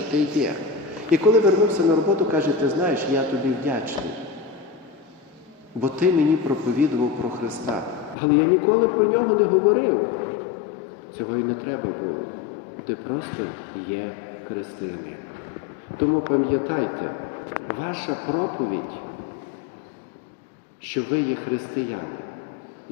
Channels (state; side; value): drops out; right; at 8.2 s